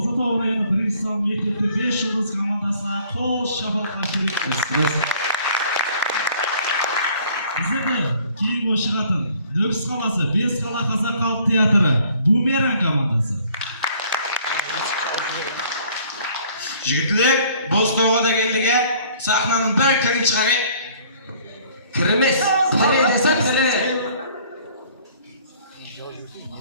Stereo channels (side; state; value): both; inverted; correlation -0.57